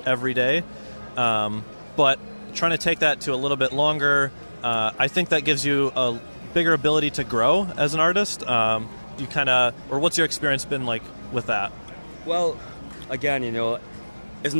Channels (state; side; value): inverted; both; correlation -1.00